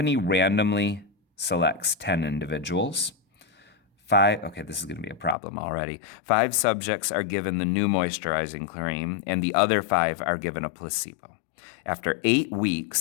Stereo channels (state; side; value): drops out; right; at 5.4 s